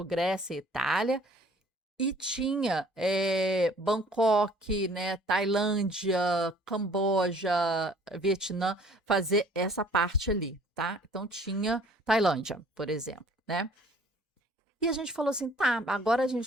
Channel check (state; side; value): normal; both; correlation 0.55